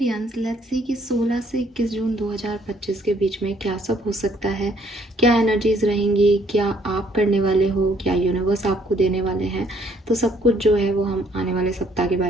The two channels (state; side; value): normal; both; correlation 0.65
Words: let's see कि 16 से 21 जून 2025 के बीच में क्या सब हो सकता है, क्या एनर्जीज रहेंगी, क्या आप करने वाले हो, क्या यूनिवर्स आपको देने वाले हैं। तो सब कुछ जो है वो हम आने वाले सप्ताह के